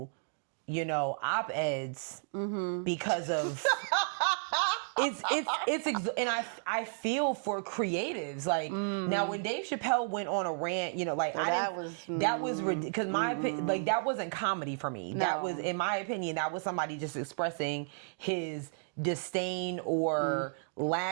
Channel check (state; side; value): silent; left; digital silence